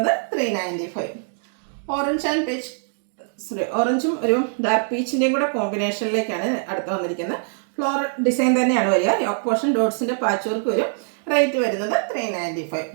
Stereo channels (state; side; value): silent; left; 63 dB below the other